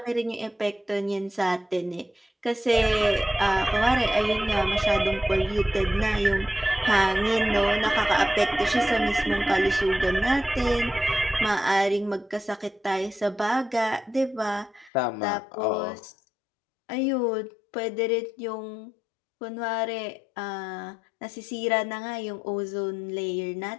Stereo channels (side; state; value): right; drops out; at 14.9 s